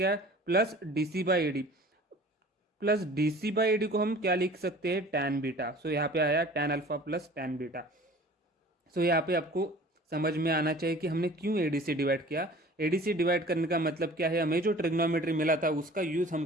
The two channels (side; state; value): both; normal; correlation 0.46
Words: plus DC by AD. Plus DC by AD को हम क्या लिख सकते हैं, tan बीटा. सो यहाँ पे आया tan alpha plus tan beta. So यहाँ पे आपको समझ में आना चाहिए कि हमने क्यों AD से डिवाइड किया. AD से डिवाइड करने का मतलब क्या है, हमें जो ट्रिग्नोमेट्री मिला था उसका यूज़ हम